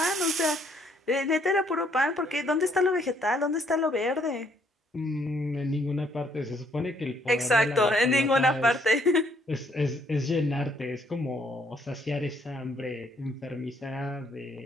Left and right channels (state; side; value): normal; both; correlation 0.67